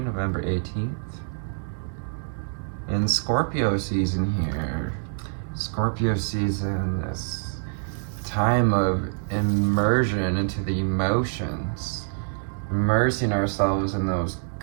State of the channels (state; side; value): silent; left; 58 dB below the other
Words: 18th. And Scorpio season here. Scorpio season, this time of immersion into the emotions. Immersing ourselves in those